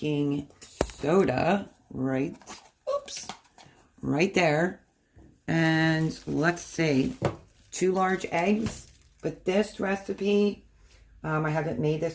soda, right there. And let's see. 2 large eggs, but this recipe, I haven't made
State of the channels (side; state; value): both; identical; correlation 1.00